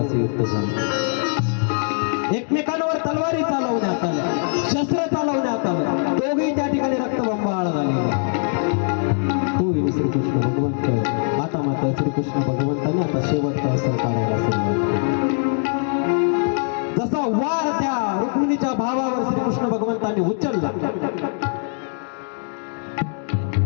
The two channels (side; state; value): right; silent; 62 dB below the other